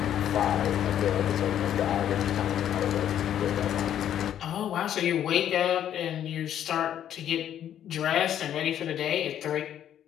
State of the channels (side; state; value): right; quieter; 10.4 dB